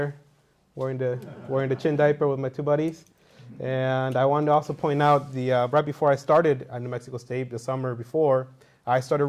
wearing the chin diaper with my two buddies. And I wanted to also point out right before I started at New Mexico State, the summer before, I started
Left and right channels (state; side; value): identical; both; correlation 1.00